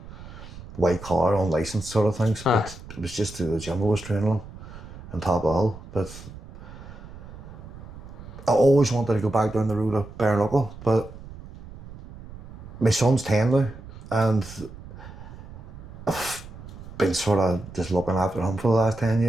white collar, unlicensed sort of things, but it was just through the gym I was training on top of all. But I always wanted to go back down the road of bare knuckle, but my son's 10 now, and I've been sort of just looking after him for the last 10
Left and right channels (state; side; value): noise; right; rumble, 15 dB below the sound